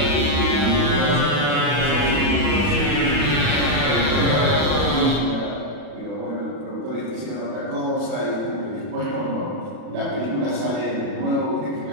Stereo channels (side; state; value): left; late; 40 ms